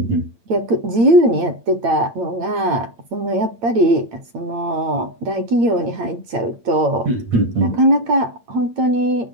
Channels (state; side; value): late; left; 8.8 ms